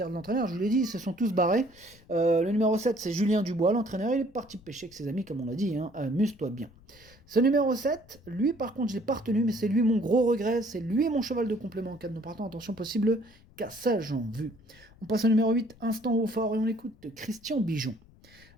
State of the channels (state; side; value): noise; left; rumble, 26 dB below the sound